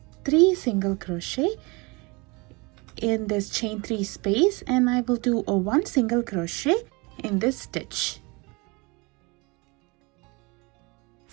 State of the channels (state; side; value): quieter; left; 27.2 dB